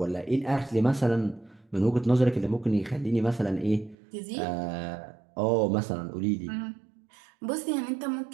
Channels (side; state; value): left; drops out; at 4.0 s